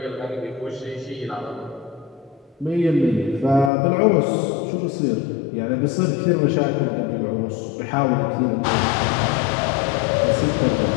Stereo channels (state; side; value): drops out; right; at 3.7 s